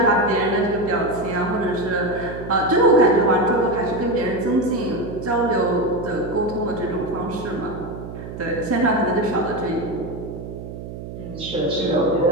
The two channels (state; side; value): noise; right; hum, 10 dB below the sound